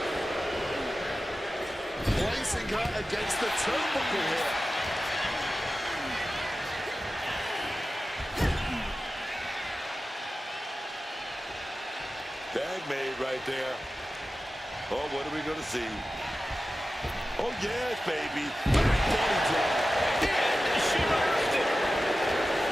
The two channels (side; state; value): both; normal; correlation 0.94